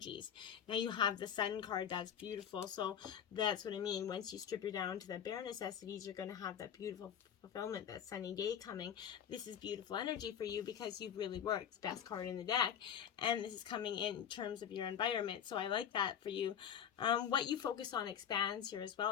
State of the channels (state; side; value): quieter; right; 8.8 dB